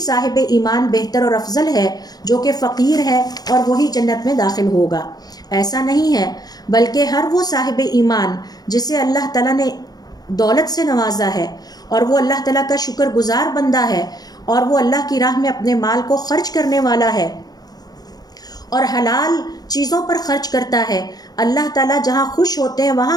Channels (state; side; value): late; right; 0.19 ms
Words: ایمان بہتر اور افضل ہے جو کہ فقیر ہے اور وہی جنت میں داخل ہوگا۔ ایسا نہیں ہے، بلکہ ہر وہ صاحب ایمان جسے اللہ تعالیٰ نے دولت سے نوازا ہے اور وہ اللہ تعالیٰ کا شکر گزار بندہ ہے اور وہ اللہ کی راہ میں اپنے مال کو خرچ کرنے والا ہے اور حلال چیزوں پر خرچ کرتا ہے، اللہ تعالیٰ جہاں خوش ہوتے ہیں